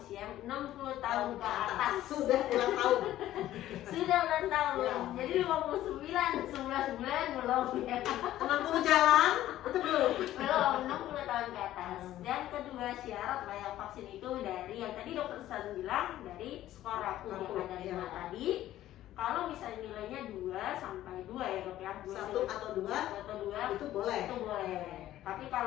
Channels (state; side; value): quieter; right; 13.6 dB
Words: 60 tahun ke atas. Sudah ulang tahun. Sudah ulang tahun. Ya. Jadi 59 bulan belum ya. 60 jalan itu belum. Belum 60 tahun ke atas. Dan kedua syarat layak vaksin itu dari yang tadi dokter San bilang dari skor rapuh yang ada 5 tadi. Kalau misalnya nilainya 2 sampai 2 ya dok ya, 1 atau 2 itu boleh. Itu boleh. Tapi